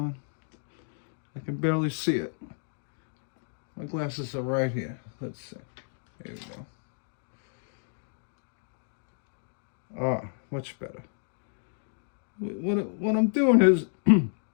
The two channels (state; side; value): silent; right; digital silence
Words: I can barely see it. My glasses are right here. Let's see. There we go. Ah, much better. What I'm doing is,